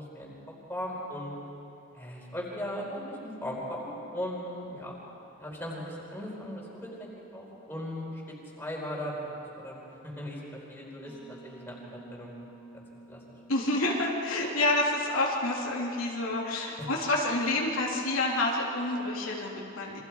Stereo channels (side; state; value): both; normal; correlation 0.12